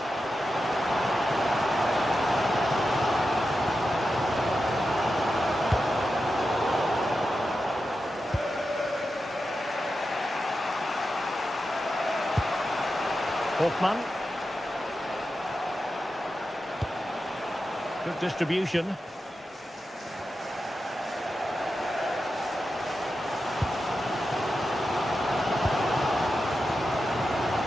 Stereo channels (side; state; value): both; normal; correlation 0.90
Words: Hoffman. Good distribution.